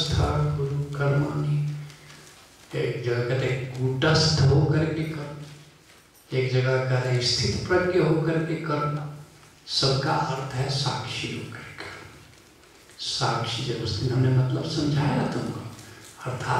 गुरु कर्माणि, एक जगह कहते कूटस्थ होकर के कर्म, एक जगह कहते स्थित प्रज्ञ होकर के कर्म, सबका अर्थ है साक्षी होकर कर्म। साक्षी जब उस दिन हमने मतलब समझाया तुमको,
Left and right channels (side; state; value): both; identical; correlation 1.00